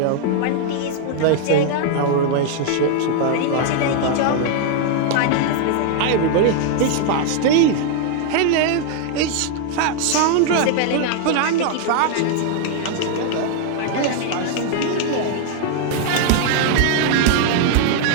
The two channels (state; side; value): different; both; correlation 0.00